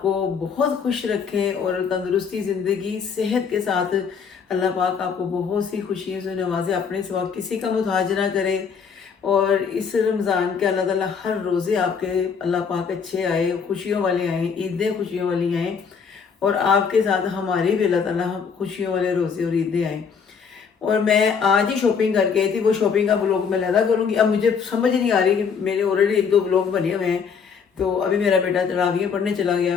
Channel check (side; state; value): right; quieter; 6.3 dB